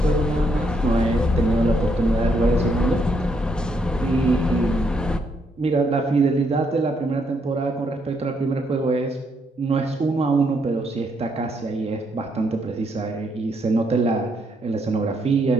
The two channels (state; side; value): normal; both; correlation 0.75